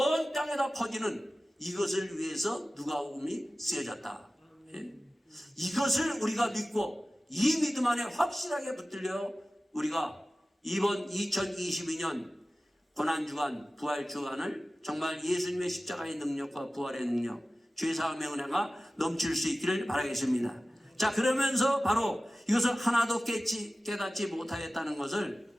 땅에다 퍼지는 이것을 위해서 누가복음이 쓰여졌다. 예? 이것을 우리가 믿고 이 믿음 안에 확실하게 붙들려 우리가 이번 2022년 고난주간, 부활주간을 정말 예수님의 십자가의 능력과 부활의 능력, 죄사함의 은혜가 넘칠 수 있기를 바라겠습니다. 자, 그러면서 바로 이것을 하나도 깨닫지 못하였다는 것을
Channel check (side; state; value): both; normal; correlation 0.96